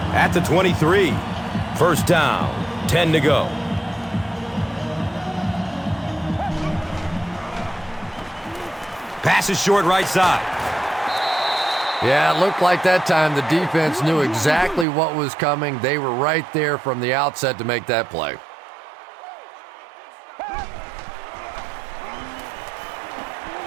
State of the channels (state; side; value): drops out; left; at 14.9 s